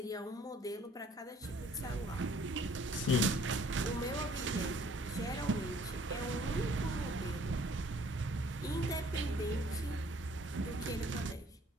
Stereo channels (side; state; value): both; normal; correlation 0.57